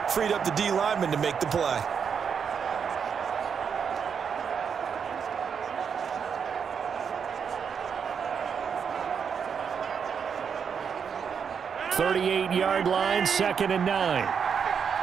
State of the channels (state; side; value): quieter; left; 6.8 dB